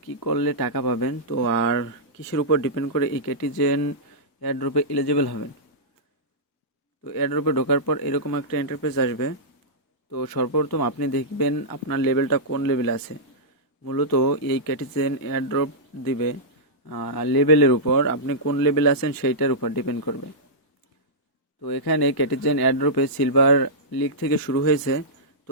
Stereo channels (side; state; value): right; late; 1.2 ms